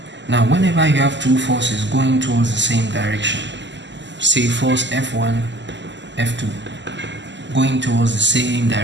Now, whenever you have two forces going towards the same direction, say force F1, F2, going towards the same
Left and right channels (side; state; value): left; late; 0.53 ms